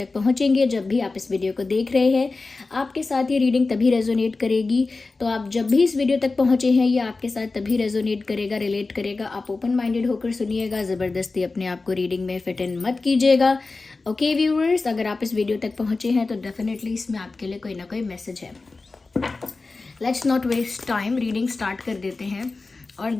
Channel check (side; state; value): right; quieter; 3.7 dB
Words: पहुंचेंगे, जब भी आप इस वीडियो को देख रहे हैं, आपके साथ ये रीडिंग तभी रेजोनेट करेगी। तो आप जब भी इस वीडियो तक पहुंचे हैं, ये आपके साथ तभी रेजोनेट करेगा, रिलेट करेगा। आप ओपन माइंडेड होकर सुनिएगा, ज़बरदस्ती अपने आप को रीडिंग में फिट इन मत कीजिएगा। ओके व्यूअर्स, अगर आप इस वीडियो तक पहुंचे हैं तो डेफिनेटली इसमें आपके लिए कोई ना कोई मैसेज है। Let's not waste time, reading start कर देते हैं और